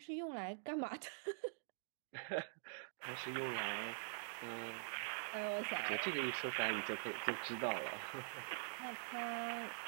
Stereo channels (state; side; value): silent; left; digital silence